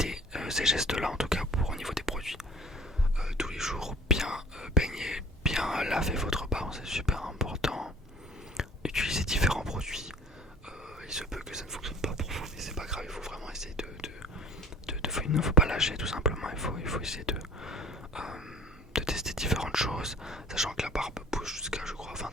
ces gestes-là, en tout cas pour au niveau des produits. Tous les jours, bien baigner, bien laver votre barbe, c'est super important. Utiliser différents produits. Il se peut que ça ne fonctionne pas pour vous, mais c'est pas grave, il faut vraiment essayer il ne faut pas lâcher tout simplement, il faut essayer de tester différentes choses, sachant que la barbe pousse jusqu'à je crois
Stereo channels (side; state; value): both; normal; correlation 0.47